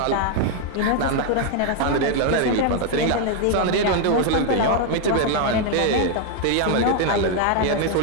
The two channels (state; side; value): different; both; correlation 0.00